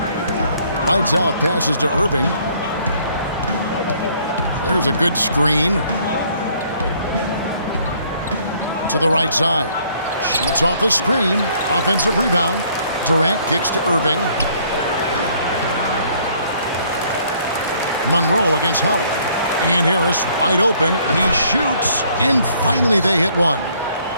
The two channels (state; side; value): inverted; both; correlation -0.62